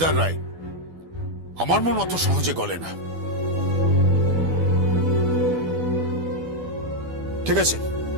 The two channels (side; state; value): left; late; 12 ms